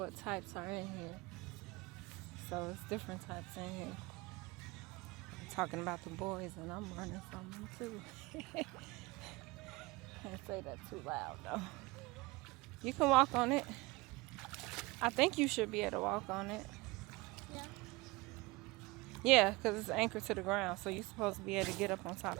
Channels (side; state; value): left; quieter; 23.3 dB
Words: types are in here. So it's different types in here. Talking about the boys and I'm running from them too. Can't say that too loud though. You can walk on it. I think you should be able to walk on it. Yeah, because it's anchored to the ground, so you're supposed to be able to get up on